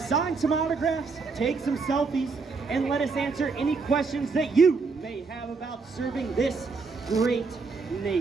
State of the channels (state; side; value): quieter; left; 4.5 dB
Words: some autographs, take some selfies, and let us answer any questions that you may have about serving this great